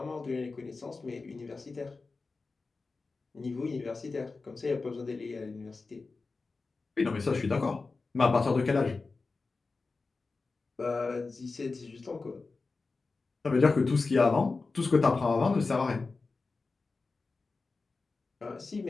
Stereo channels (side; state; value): right; quieter; 4.0 dB